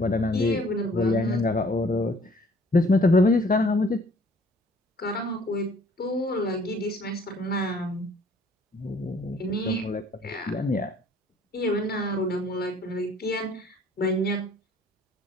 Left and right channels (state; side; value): normal; both; correlation 0.58